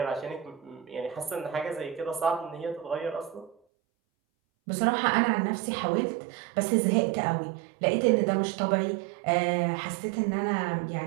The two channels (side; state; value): left; drops out; at 3.6 s